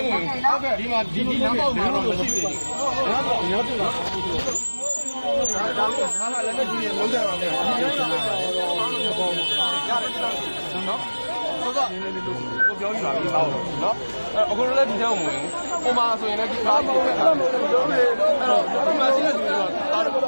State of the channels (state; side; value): inverted; both; correlation -1.00